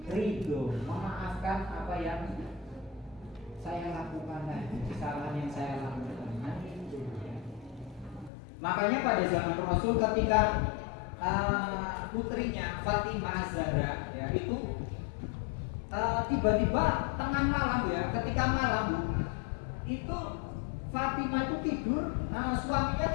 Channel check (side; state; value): right; drops out; at 8.3 s